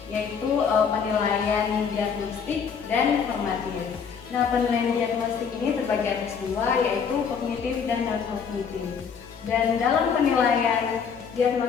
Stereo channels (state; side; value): quieter; right; 6.5 dB